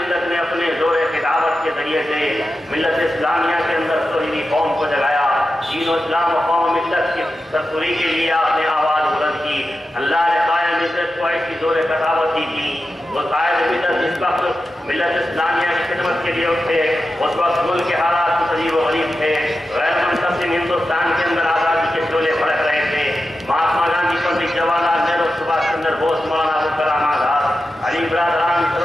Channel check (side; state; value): both; normal; correlation 0.91